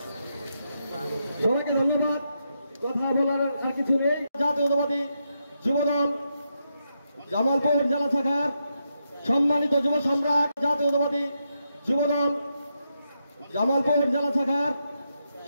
সবাইকে ধন্যবাদ, কথা বলার আর কিছু নেই। জাতীয়তাবাদী যুবদল জামালপুর জেলা শাখার সম্মানিত যুব সম্রাট, জাতীয়তাবাদী যুবদল জামালপুর জেলা শাখার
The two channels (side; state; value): both; inverted; correlation -0.83